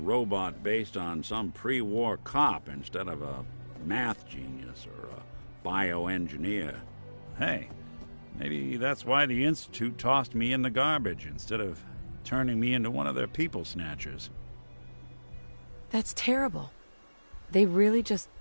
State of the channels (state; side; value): inverted; both; correlation -1.00